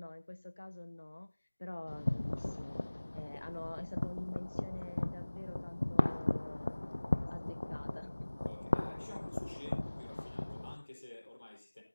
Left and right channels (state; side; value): inverted; both; correlation -1.00